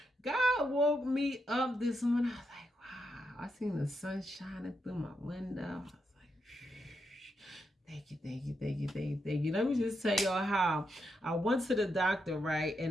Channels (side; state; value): both; normal; correlation 0.83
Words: God woke me up this morning. I was like, wow. I seen the sun shining through my window. I was like, thank you, thank you, thank you, thank you, thank you. Let me just tell y'all how I went to the doctor, right?